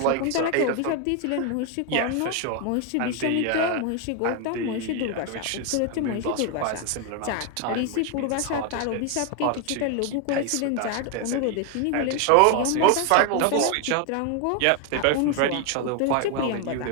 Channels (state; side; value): different; both; correlation 0.01